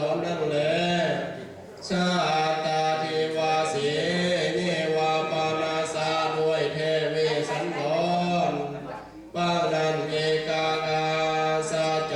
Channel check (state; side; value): identical; both; correlation 1.00